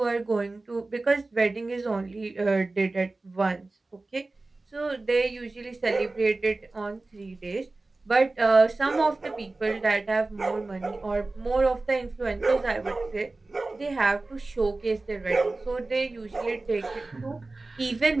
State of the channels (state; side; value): quieter; left; 3.2 dB